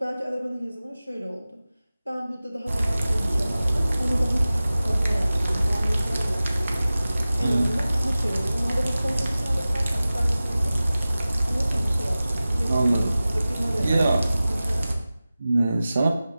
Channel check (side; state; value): both; inverted; correlation -0.96